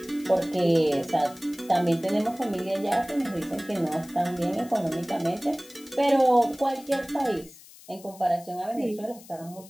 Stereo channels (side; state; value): left; noise; hiss, 21 dB below the sound